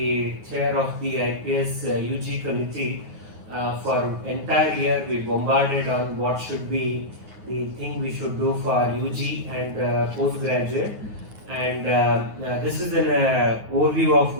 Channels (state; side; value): late; left; 9.4 ms